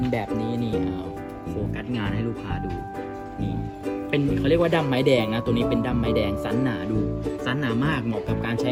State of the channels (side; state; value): both; identical; correlation 1.00